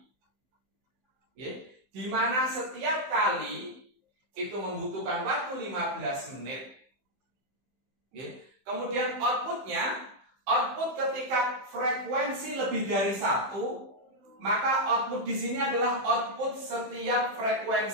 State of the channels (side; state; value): left; late; 15 ms